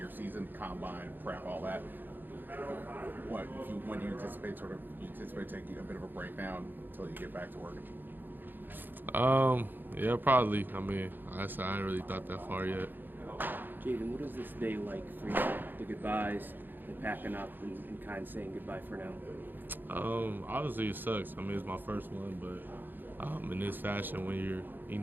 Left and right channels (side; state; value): left; late; 0.091 ms